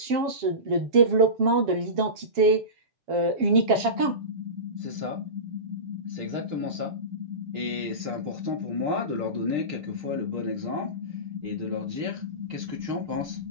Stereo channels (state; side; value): late; left; 7.3 ms